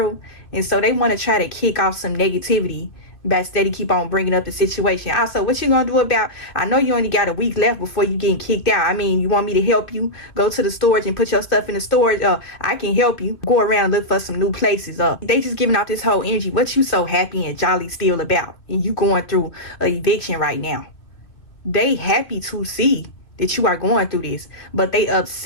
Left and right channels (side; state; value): right; late; 2.8 ms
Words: And so they want to try to kick off some negativity by steady keep on bringing up the situation. Also, what you gonna do about, I know you only got a week left before you getting kicked out. I mean, you want me to help you go to the storage and put your stuff in the storage? I can help you go around and look for some new places. They just giving out this whole energy. What you so happy and jolly still about? And you going through a eviction right now. They happy to see that you are going through this, but they